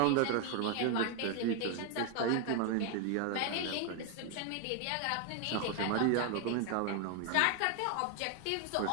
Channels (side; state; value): both; different; correlation 0.01